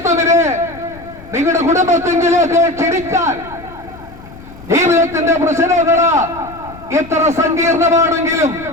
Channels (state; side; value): noise; left; rumble, 19 dB below the sound